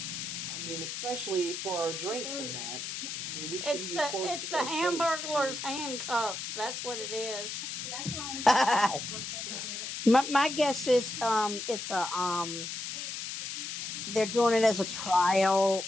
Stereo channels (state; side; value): noise; left; hiss, 5 dB below the sound